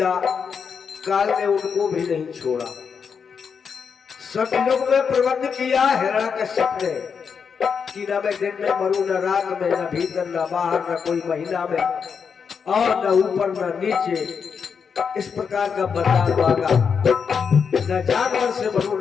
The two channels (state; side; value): quieter; right; 6.3 dB